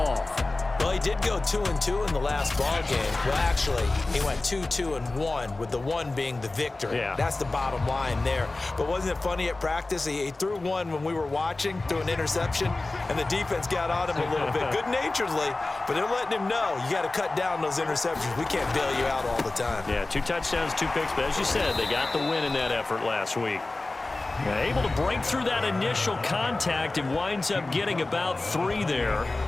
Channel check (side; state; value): right; quieter; 3.1 dB